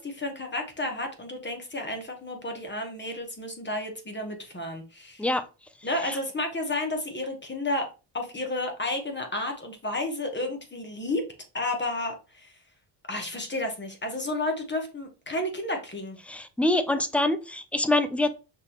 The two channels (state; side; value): normal; both; correlation 0.21